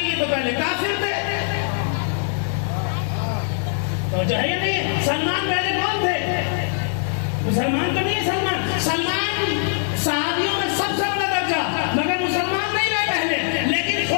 یہ تو پہلے کافر تھے. توجہ ہے یا نہیں؟ سلمان پہلے کون تھے؟ مسلمان تو نہیں ہے. سلمان صحابیوں میں سب سے بڑا درجہ، مگر مسلمان نہیں رہے پہلے. لیکن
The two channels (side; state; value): right; silent; digital silence